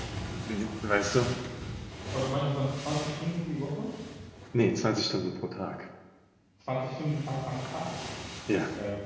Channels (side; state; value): both; identical; correlation 1.00